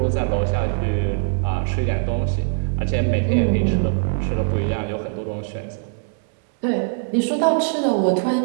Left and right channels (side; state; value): left; silent; digital silence